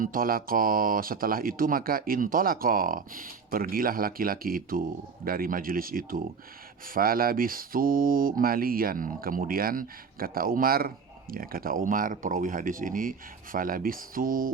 tolako, setelah itu maka intolako, pergilah laki-laki itu dari majelis itu. Falabistu malian, kemudian kata Umar perawi hadis ini,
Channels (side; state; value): left; quieter; 5.5 dB